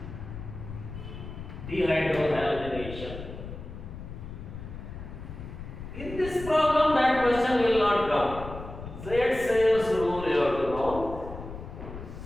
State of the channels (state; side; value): noise; left; rumble, 11 dB below the sound